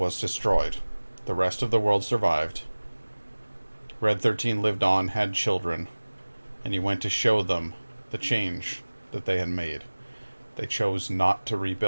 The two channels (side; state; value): both; inverted; correlation -1.00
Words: destroyed. The rest of the world survived. Red 13 lived on, had children, and he went to show them the change that they had made. They chose not to